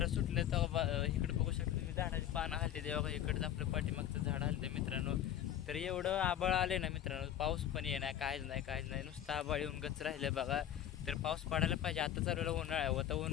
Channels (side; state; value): right; quieter; 10.9 dB